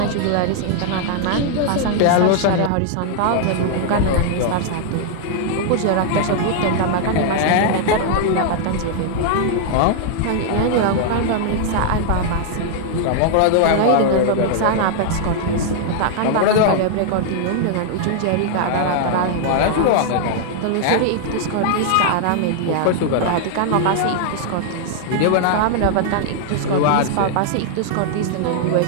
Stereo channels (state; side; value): different; both; correlation -0.01